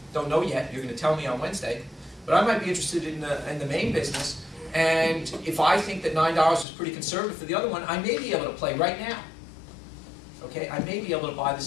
Don't know yet, you're going to tell me on Wednesday, but I might be interested in the main business. And if I think that $9 is pretty conservative for the other one, I may be able to play right now. Okay, I may be able to buy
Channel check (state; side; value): drops out; right; at 6.7 s